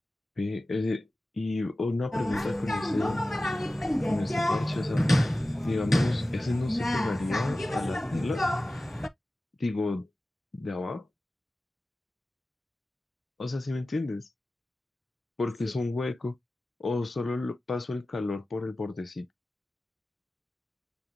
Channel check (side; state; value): both; normal; correlation 0.96